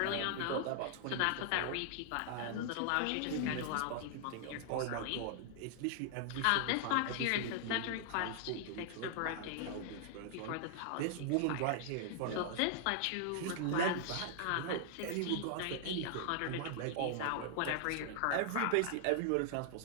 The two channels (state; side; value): different; both; correlation 0.00